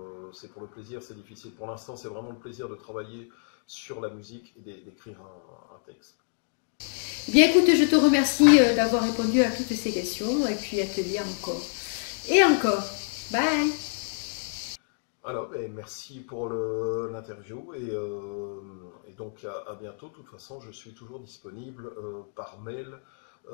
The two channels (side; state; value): right; silent; digital silence